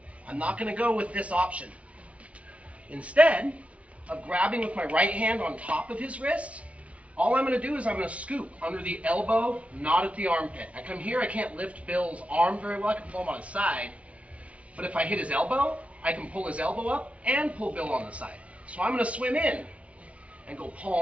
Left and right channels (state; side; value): late; left; 0.064 ms